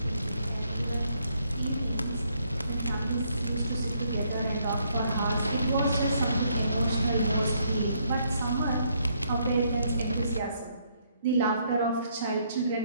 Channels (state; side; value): inverted; both; correlation -0.71